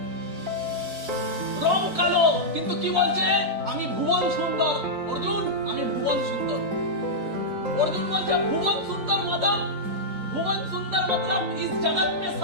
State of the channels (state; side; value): late; left; 4.4 ms